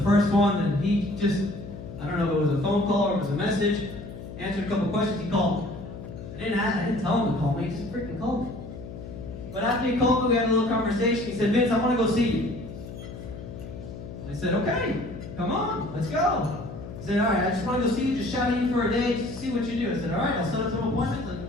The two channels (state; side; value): noise; left; hum, 11 dB below the sound